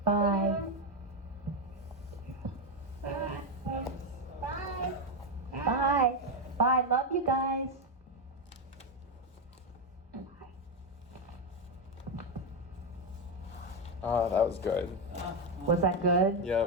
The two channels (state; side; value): normal; both; correlation 0.07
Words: Bye. Bye. Bye. Bye. Bye. Love you guys. Ah, that was good. Was that good?